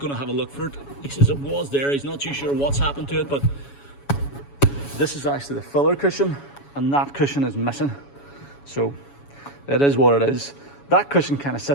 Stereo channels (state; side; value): late; right; 7.1 ms